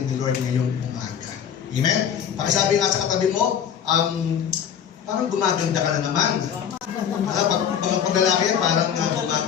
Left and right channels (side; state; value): right; quieter; 8.5 dB